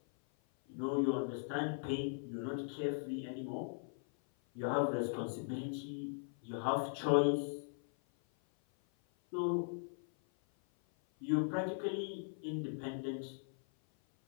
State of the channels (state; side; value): silent; right; 52 dB below the other